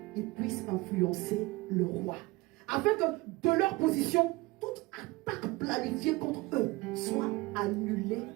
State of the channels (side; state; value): left; quieter; 22.2 dB